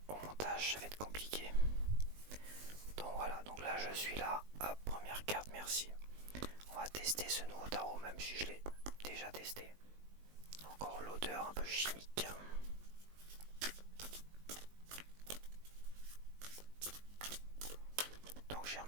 au montage ça va être compliqué. Donc voilà, donc là je suis là, hop, première carte, merci. On va tester ce nouveau tarot même si je l'ai déjà testé. Encore l'odeur un peu chimique. Donc j'ai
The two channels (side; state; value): left; late; 20 ms